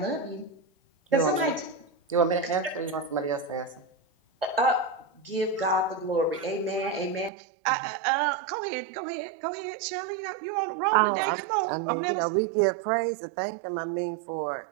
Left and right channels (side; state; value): left; drops out; at 7.3 s